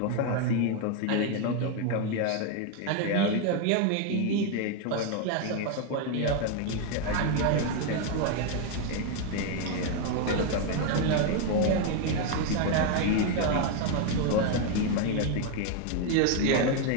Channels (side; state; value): both; different; correlation 0.01